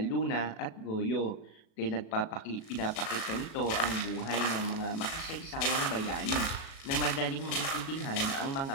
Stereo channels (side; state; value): right; late; 37 ms